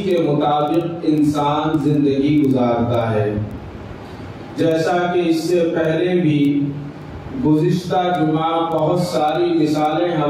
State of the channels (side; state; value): both; identical; correlation 1.00